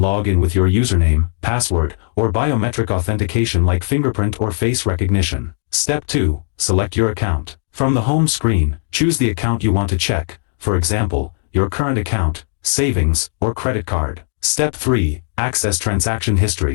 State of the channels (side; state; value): right; silent; digital silence